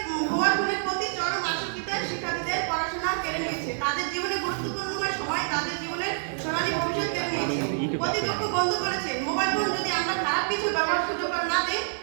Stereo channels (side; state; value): left; silent; digital silence